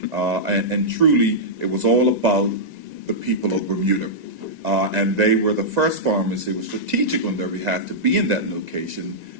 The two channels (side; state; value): left; late; 2.0 ms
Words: And truly, it was all about the people of Bermuda. And they were the first pharmacy. It was strategic on their behalf to be in that location